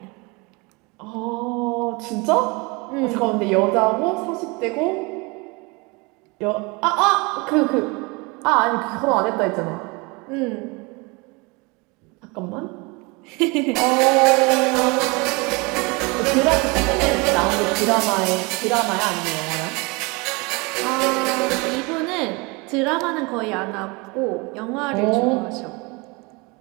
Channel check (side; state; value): left; quieter; 27.4 dB